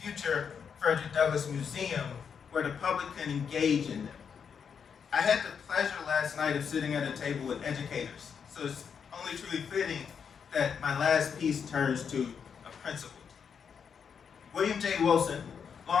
future Frederick Douglass Museum, where the public can engage in them. I had the pleasure last night of sitting at a table with educators, so it's only truly fitting that my last piece turns to a principle. William J. Wilson,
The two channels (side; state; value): right; quieter; 6.8 dB